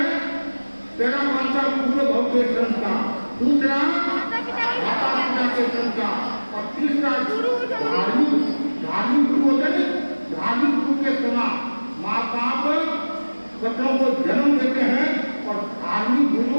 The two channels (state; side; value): inverted; both; correlation -1.00